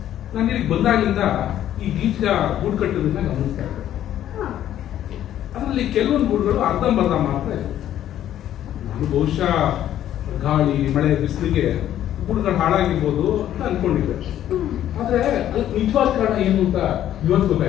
ನಾನು ಇಲ್ಲಿಗೆ ಬಂದಾಗಿಂದ ಈ ಬೀಜ ಗೂಡು ಕಟ್ಟೋದನ್ನ ಗಮನಿಸ್ತಾ ಇದ್ದೆ. ಅದರಲ್ಲಿ ಕೆಲವೊಂದು ಗೂಡುಗಳು ಅರ್ಧಂಬರ್ಧ ಮಾತ್ರ ಇದೆ. ನಾನು ಬಹುಶಃ ಗಾಳಿ ಮಳೆ ಬಿಸಿಲಿಗೆ ಗೂಡುಗಳು ಹಾಳಾಗಿರ್ಬೋದು ಅಂತ ಅನ್ಕೊಂಡಿದ್ದೆ. ಆದ್ರೆ ಅದಕ್ಕೆ ನಿಜವಾದ ಕಾರಣ ಏನು ಅಂತ ಇವತ್ತು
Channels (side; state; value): right; quieter; 11.6 dB